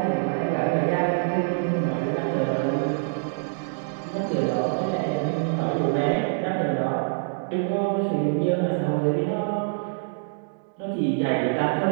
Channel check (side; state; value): left; silent; digital silence